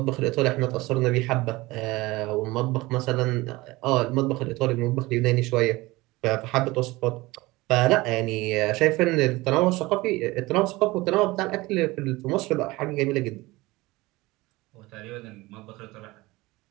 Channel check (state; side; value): quieter; left; 20.8 dB